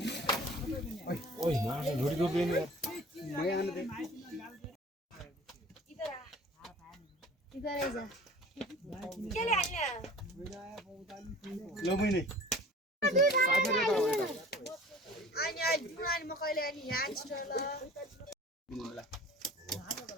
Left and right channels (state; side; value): normal; both; correlation 0.45